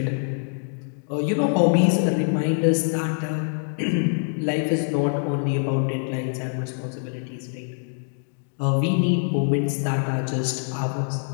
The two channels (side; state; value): right; silent; digital silence